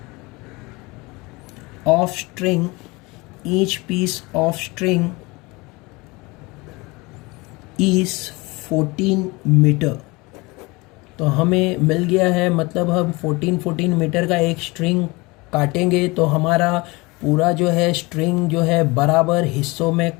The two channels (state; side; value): quieter; right; 24.3 dB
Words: of string is 14 metre. तो हमें मिल गया है, मतलब हम 14 मीटर का एक स्ट्रिंग काटेंगे, तो हमारा पूरा जो है स्ट्रिंग जो है बराबर हिस्सों में